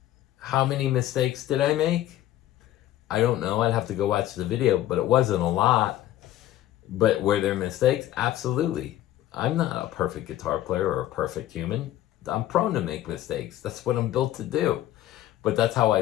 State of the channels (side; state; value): right; quieter; 13.7 dB